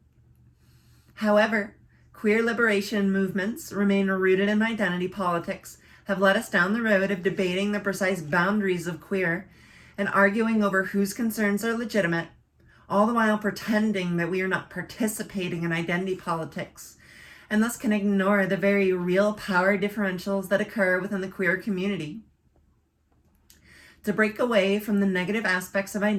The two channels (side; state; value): both; identical; correlation 1.00